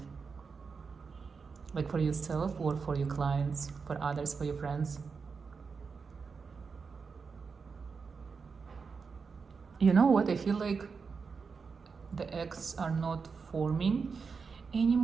Like for yourself or for your clients, for others, for your friends? You know what? I feel like the eggs are not forming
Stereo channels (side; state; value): left; quieter; 5.2 dB